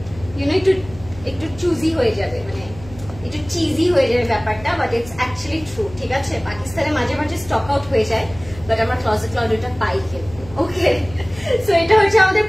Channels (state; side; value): noise; left; hum, 17 dB below the sound